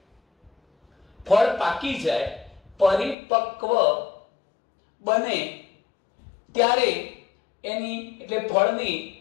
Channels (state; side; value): drops out; right; at 3.2 s